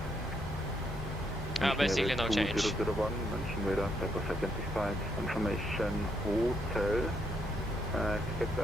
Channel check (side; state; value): both; normal; correlation 0.75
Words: Basically no change. 2001, München Radar, Pepper identified. Information Hotel. Expect